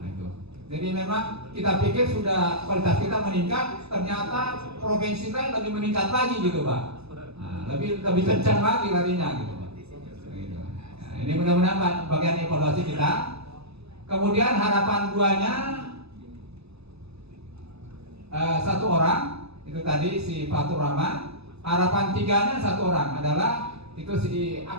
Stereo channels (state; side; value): late; left; 0.79 ms